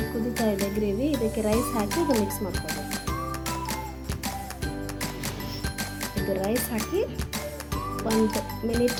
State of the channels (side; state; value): both; identical; correlation 1.00